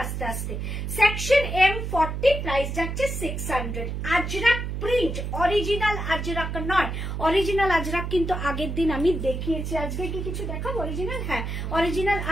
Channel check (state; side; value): noise; right; hum, 4 dB below the sound